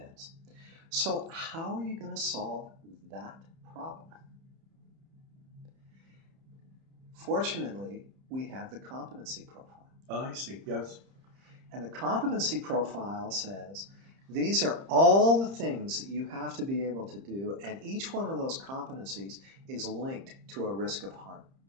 So how are you going to solve that problem? Fortunately, we have the competency profile. Oh, I see, yes. And the competency profile says, these are all the things that you have to be able to do, and each one of those competencies is linked to a risk of harm.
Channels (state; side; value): late; left; 30 ms